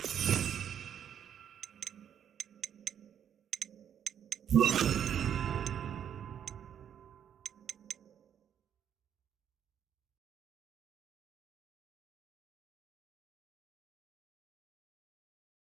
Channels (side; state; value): left; quieter; 9.0 dB